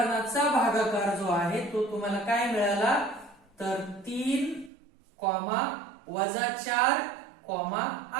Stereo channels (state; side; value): drops out; left; at 4.7 s